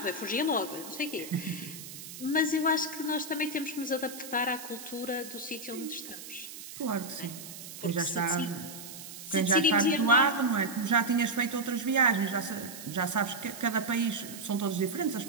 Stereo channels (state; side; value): noise; right; hiss, 12 dB below the sound